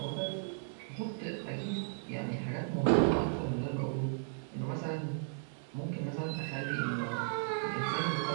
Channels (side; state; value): left; silent; digital silence